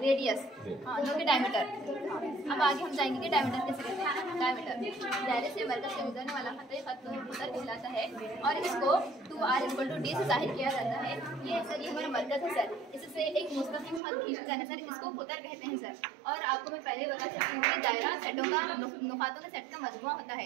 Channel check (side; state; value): left; drops out; at 14.0 s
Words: रेडियस जो कि डायमीटर। अब आगे हम जाएंगे कि डायमीटर कैसे कहते हैं। डायमीटर दायरे से मरकज से गुजरने वाला खत कहलाता है और इसको 2r = d से जाहिर किया जाता है। ये सर ये हमारा मरकज है सर। इससे एक मुस्तकिल खत खींचा जाना सर, इसको खुतर कहते हैं सर। और आपको मैं पहले बता सकती हूँ कि दायरा सेटों का नुकातों के सेट का मजमुआ होता है।